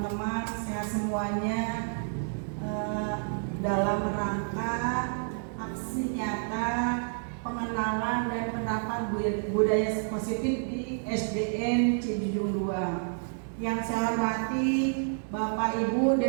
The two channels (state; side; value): silent; left; digital silence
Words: sehat semuanya, dalam rangka aksi nyata pengenalan dan penerapan budaya positif di SDN Cijujung 2. Yang saya hormati Bapak Ibu